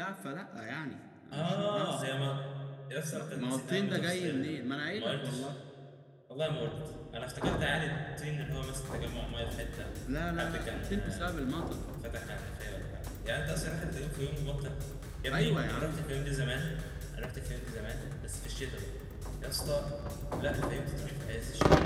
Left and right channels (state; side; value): identical; both; correlation 1.00